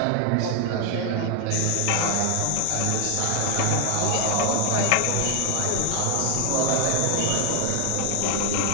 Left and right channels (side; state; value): both; different; correlation 0.00